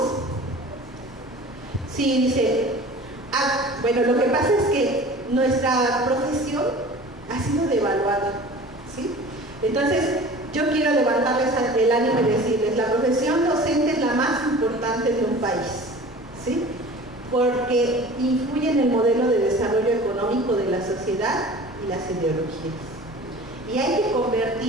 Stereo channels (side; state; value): both; normal; correlation 0.41